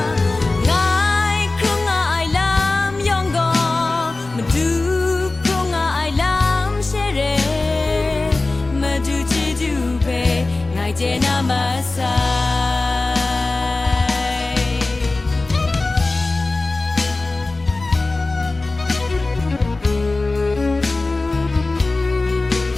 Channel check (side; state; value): right; quieter; 3.2 dB